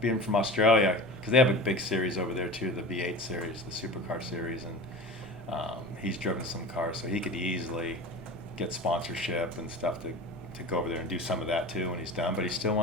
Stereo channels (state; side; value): normal; both; correlation 0.33